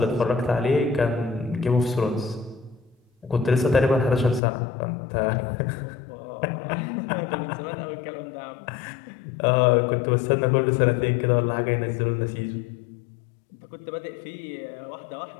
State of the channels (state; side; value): drops out; right; at 4.4 s